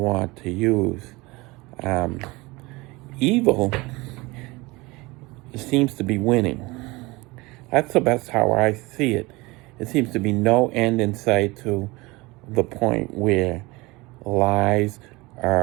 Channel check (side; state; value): left; quieter; 23.0 dB